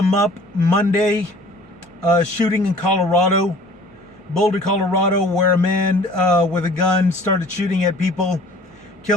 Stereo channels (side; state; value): both; normal; correlation 0.49